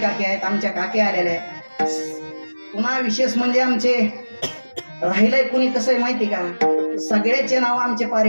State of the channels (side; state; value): both; inverted; correlation -1.00